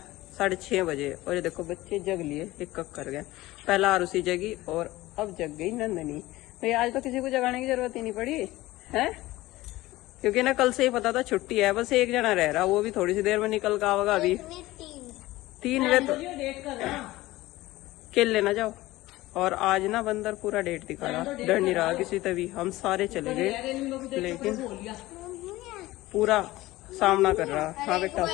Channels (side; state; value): right; quieter; 18.0 dB